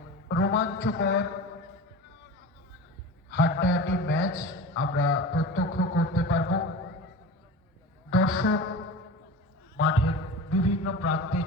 রোমাঞ্চকর হাড্ডাহাড্ডি ম্যাচ আমরা প্রত্যক্ষ করতে পারব। দর্শক মাঠের বিভিন্ন প্রান্তে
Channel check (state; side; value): normal; both; correlation 0.33